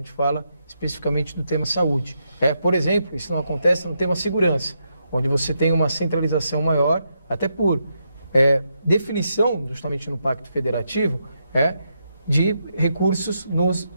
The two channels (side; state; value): both; inverted; correlation -0.82